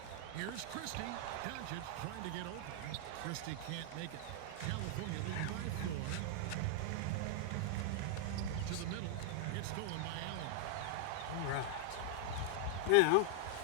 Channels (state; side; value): different; both; correlation -0.01